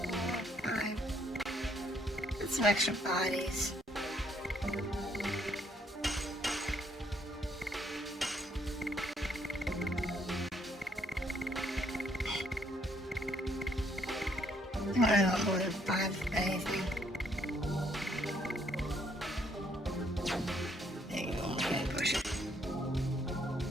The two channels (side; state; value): both; normal; correlation 0.69